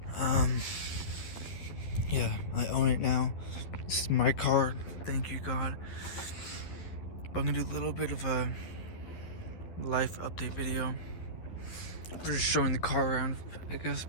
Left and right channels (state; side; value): late; right; 11 ms